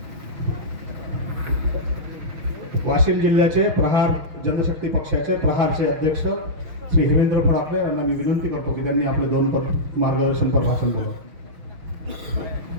वाशिम जिल्ह्याचे प्रहार जनशक्ती पक्षाचे प्रहारचे अध्यक्ष श्री हेमेंद्र फडाके यांना मी विनंती करतो की त्यांनी आपले 2 मार्गदर्शनपर भाषण करावं.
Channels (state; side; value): late; left; 6.2 ms